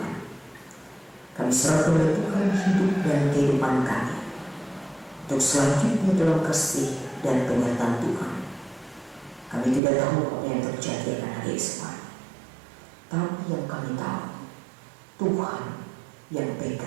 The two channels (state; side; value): drops out; left; at 9.8 s